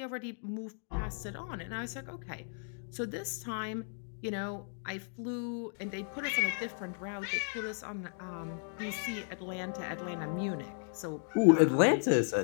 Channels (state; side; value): silent; right; 55 dB below the other